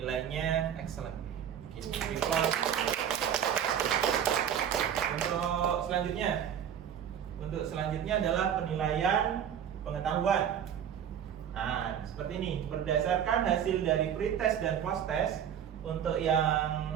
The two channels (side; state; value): left; quieter; 9.0 dB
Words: excellent. Untuk selanjutnya adalah penilaian pengetahuan. Nah, seperti ini. Berdasarkan hasil dari pretest dan post-test, untuk